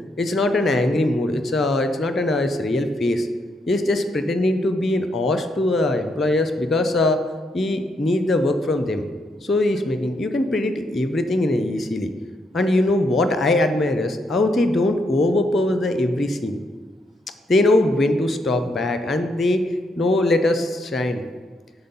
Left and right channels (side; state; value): both; normal; correlation 0.77